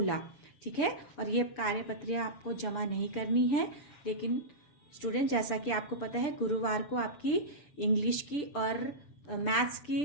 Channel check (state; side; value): late; right; 6.8 ms